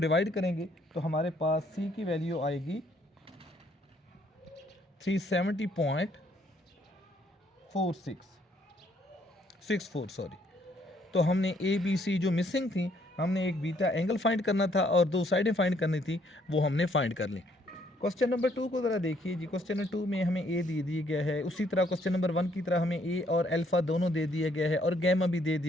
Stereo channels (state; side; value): normal; both; correlation 0.67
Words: करेंगे तो हमारे पास C की वैल्यू आएगी 370.64 सॉरी। तो हमने ABC जो मिसिंग थी, हमने एक बीटा एंगल फाइंड करना था और दो साइडें फाइंड करनी थी, वो हमने फाइंड कर ली। क्वेश्चन नंबर 2 को ज़रा देखिए जी। क्वेश्चन नंबर 2 में हमें ए दे दिया गया है, उसी तरह क्वेश्चन नंबर 1 की तरह हमें ए और अल्फ़ा दोनों दे दिया गया है और गैमा भी दे